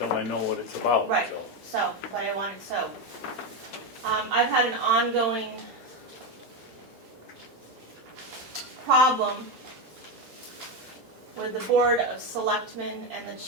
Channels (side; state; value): left; late; 3.4 ms